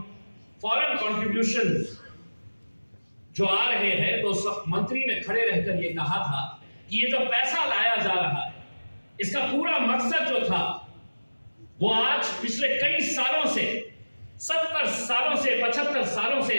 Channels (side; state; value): both; inverted; correlation -1.00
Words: फॉरेन कंट्रीब्यूशन जो आ रहे हैं, तो सब मंत्री ने खड़े रहकर यह कहा था कि ये जो पैसा लाया जा रहा है, इसका पूरा मकसद जो था वो आज पिछले कई सालों से, 70 सालों से, 75 सालों से